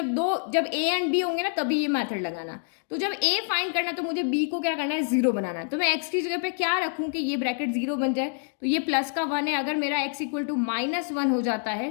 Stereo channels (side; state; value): right; silent; 57 dB below the other